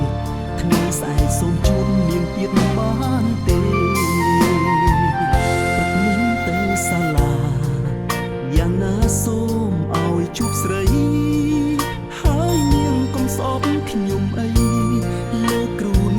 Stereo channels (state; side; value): identical; both; correlation 1.00